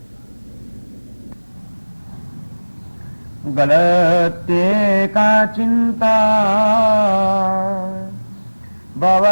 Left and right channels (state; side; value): inverted; both; correlation -1.00